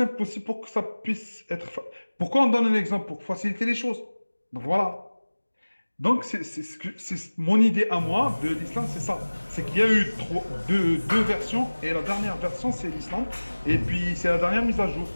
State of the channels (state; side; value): inverted; both; correlation -1.00